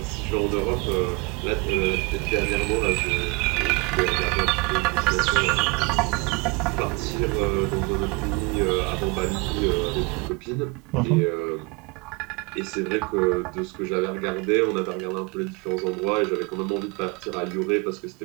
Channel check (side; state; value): left; quieter; 28.0 dB